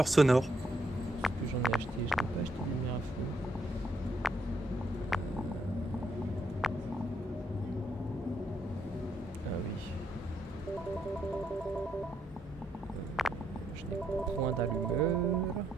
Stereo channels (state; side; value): normal; both; correlation 0.75